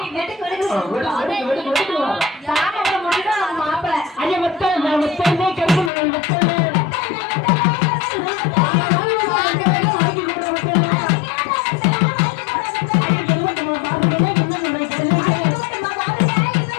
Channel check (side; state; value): right; drops out; at 5.9 s